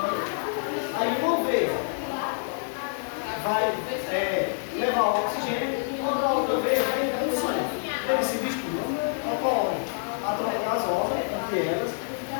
aí uma veia vai levar o oxigênio, quando a outra veia vai entrar no sangue. Eles se misturam, ocorre a troca gasosa entre elas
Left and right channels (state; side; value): silent; right; digital silence